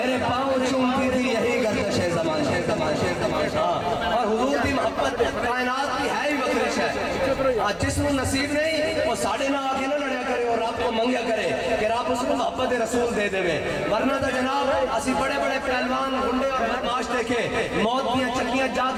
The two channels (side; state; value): both; identical; correlation 1.00